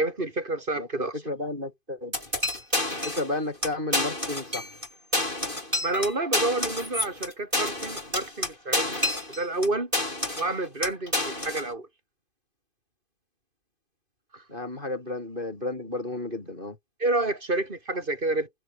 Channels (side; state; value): left; late; 2.5 ms